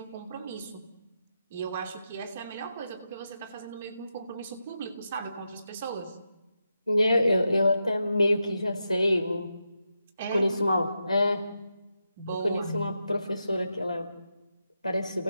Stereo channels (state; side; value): inverted; both; correlation -0.87